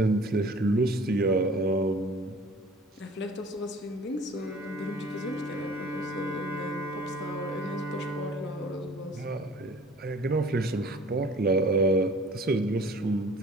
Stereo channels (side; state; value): both; normal; correlation 0.47